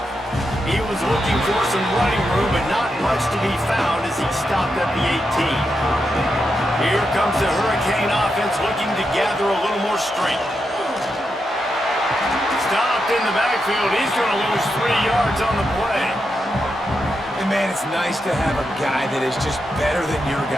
He was looking for some running room, but not much to be found as he stopped at the 18. Here comes the Hurricane offense looking to gather a little more strength. Stopped in the backfield. He's going to lose 3 yards on the play. And man, it's nice to have a guy that is just better than your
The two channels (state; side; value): normal; both; correlation 0.85